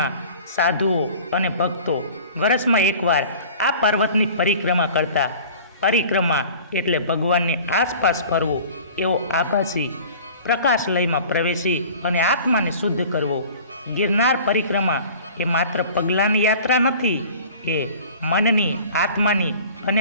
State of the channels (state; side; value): inverted; both; correlation -0.44